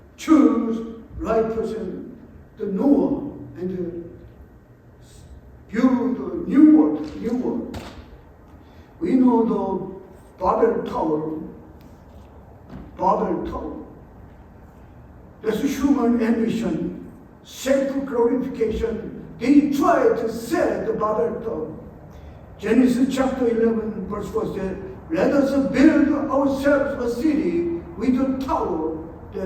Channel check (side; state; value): both; identical; correlation 1.00